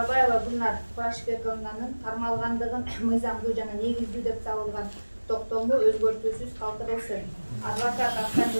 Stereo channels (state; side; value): inverted; both; correlation -1.00